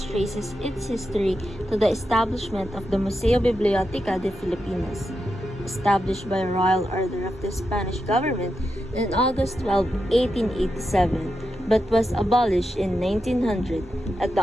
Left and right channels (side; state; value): both; normal; correlation 0.87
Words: traces its history to the establishment of the Museo Biblioteca de Filipinas, established by Royal Order of the Spanish government on August 12, 1887, but was abolished in 1900 at the